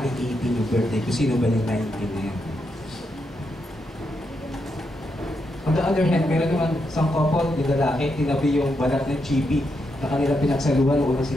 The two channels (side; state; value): both; normal; correlation 0.82